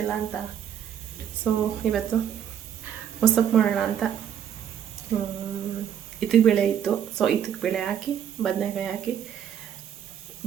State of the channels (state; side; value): quieter; left; 9.3 dB